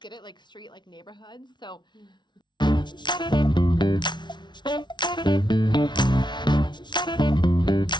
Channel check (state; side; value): late; right; 0.22 ms